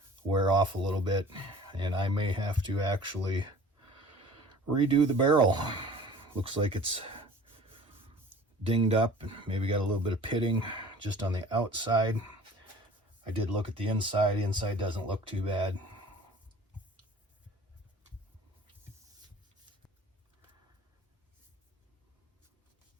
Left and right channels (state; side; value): normal; both; correlation 0.46